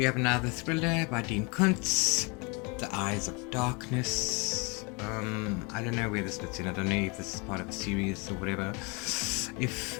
have another thriller by Dean Kuntz, The Eyes of Darkness. I don't know where this fits in. I don't know if this is part of a series or whatever. If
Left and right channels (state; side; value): quieter; right; 30.7 dB